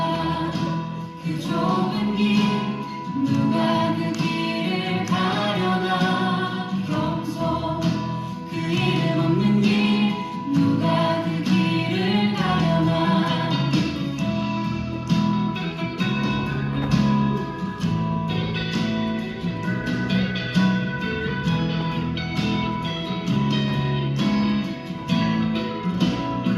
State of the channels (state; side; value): identical; both; correlation 1.00